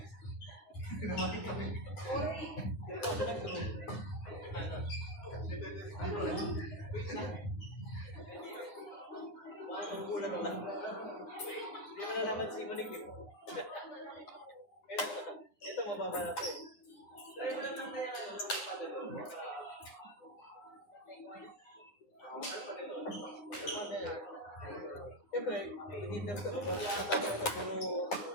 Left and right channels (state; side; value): late; right; 9.7 ms